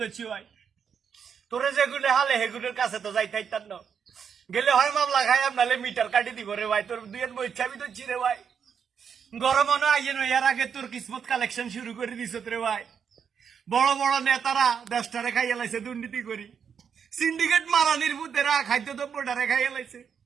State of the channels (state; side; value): quieter; left; 7.2 dB